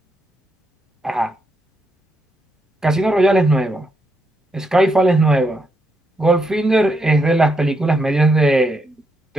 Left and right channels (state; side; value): normal; both; correlation 0.80